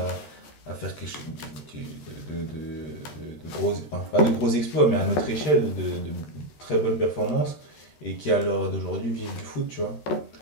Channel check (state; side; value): late; right; 14 ms